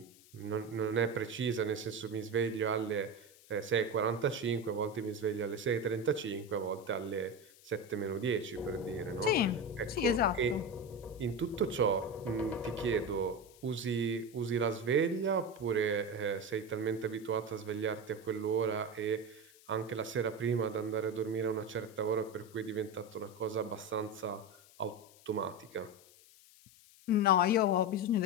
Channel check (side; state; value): left; noise; hiss, 24 dB below the sound